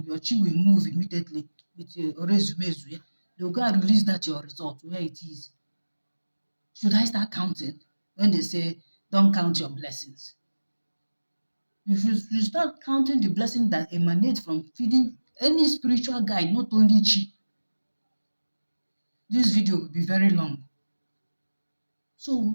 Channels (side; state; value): both; inverted; correlation -1.00